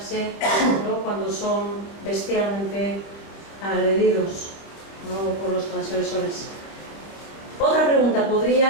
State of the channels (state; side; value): late; right; 26 ms